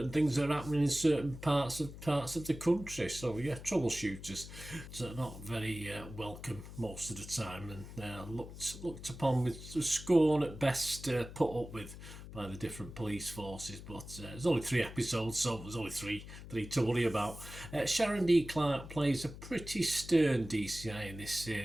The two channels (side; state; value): left; noise; hum, 13 dB below the sound